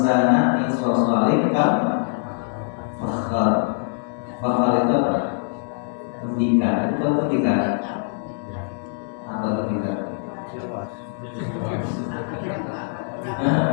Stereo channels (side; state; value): right; silent; digital silence